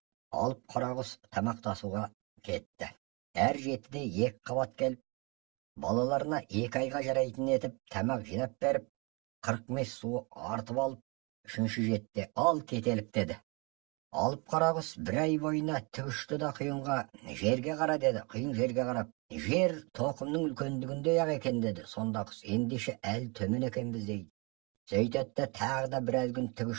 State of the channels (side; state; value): left; quieter; 29.5 dB